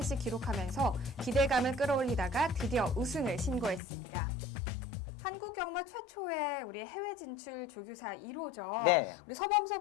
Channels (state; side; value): drops out; right; at 3.8 s